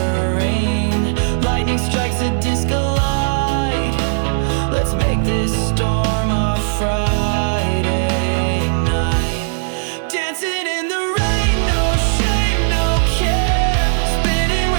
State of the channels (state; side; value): silent; left; digital silence